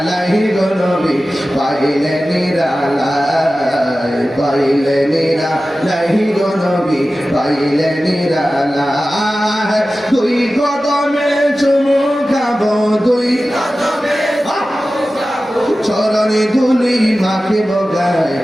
গো নবী, পাইলে নিরালাই, পাইলে নিরালাই গো নবী, পাইলে নিরালাই। দুই কদমে চুমু খাবো, দুই চরণে ধুলি মাখিব গায়ে,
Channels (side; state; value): both; normal; correlation 0.95